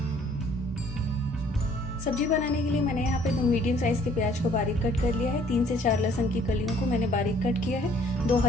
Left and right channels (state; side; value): normal; both; correlation 0.60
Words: सब्जी बनाने के लिए मैंने यहाँ पे 2 मीडियम साइज के प्याज को बारीक कट कर लिया है। 3 से 4 लहसुन की कलियों को मैंने बारीक कट किया है। 2